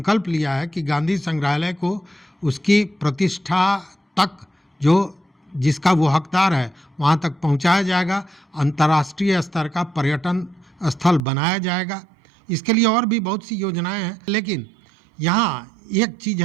लिया है कि गांधी संग्रहालय को उसकी प्रतिष्ठा तक, जो जिसका वो हकदार है, वहाँ तक पहुँचाया जाएगा, अंतर्राष्ट्रीय स्तर का पर्यटन स्थल बनाया जाएगा। इसके लिए और भी बहुत सी योजनाएं हैं, लेकिन यहाँ एक चीज़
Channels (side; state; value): left; drops out; at 11.2 s